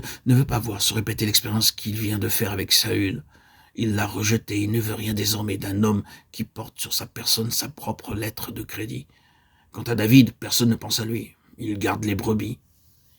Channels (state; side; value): identical; both; correlation 1.00